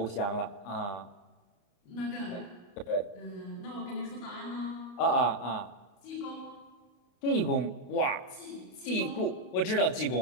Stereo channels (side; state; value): right; late; 31 ms